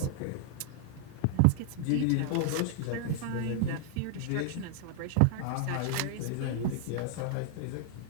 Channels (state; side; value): different; both; correlation 0.00